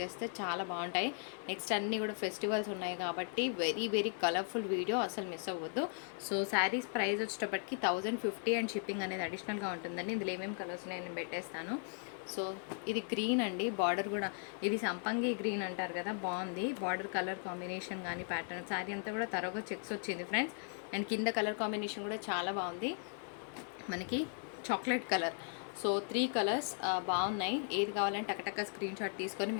చేస్తే చాలా బాగుంటాయి. నెక్స్ట్ అన్నీ కూడా ఫెస్టివల్స్ ఉన్నాయి కాబట్టి వెరీ వెరీ కలర్ఫుల్ వీడియో, అసలు మిస్ అవ్వద్దు. సో శారీస్ ప్రైస్ వచ్చేటప్పటికి 1050 అండ్ షిప్పింగ్ అనేది అడిషనల్గా ఉంటుందండి. ఇందులో ఏమేమి కలర్స్ ఉన్నాయో నేను పెట్టేస్తాను. సో ఇది గ్రీన్ అండి, బార్డర్ కూడా ఇది సంపంగి గ్రీన్ అంటారు కదా, బాగుంది బార్డర్ కలర్ కాంబినేషన్ కానీ ప్యాటర్న్. శారీ అంతా కూడా తరగా చెక్స్ వచ్చింది ఫ్రెండ్స్. అండ్ కింద కలర్ కాంబినేషన్ కూడా చాలా బాగుంది, మనకి చాక్లెట్ కలర్. సో 3 కలర్స్ బాగున్నాయి. ఏది కావాలంటే టకటక స్క్రీన్ షాట్ తీసుకొని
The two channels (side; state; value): right; silent; 53 dB below the other